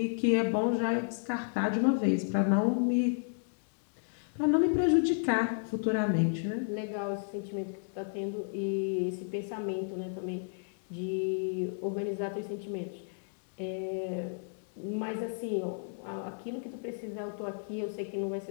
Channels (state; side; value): silent; right; digital silence